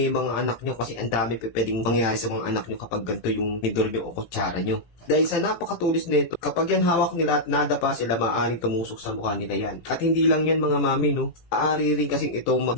yung mga anak nyo kasi ang dami pwedeng mangyari sa mga anak nyo kapag ganito yung tinidor nyo o kutsara nyo. Dahil sa napakatulis nito, kapag yan hawak nila at nadapa sila, maaaring tumusok sa mukha nila yan. At hindi lang yan mga mami, no? Aari rin kasing ito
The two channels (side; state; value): right; late; 18 ms